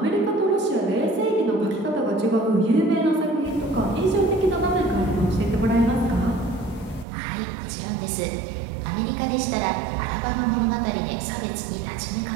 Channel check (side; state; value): left; drops out; at 7.1 s